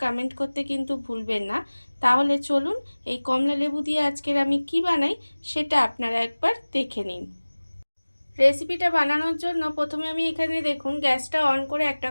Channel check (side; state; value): both; inverted; correlation -1.00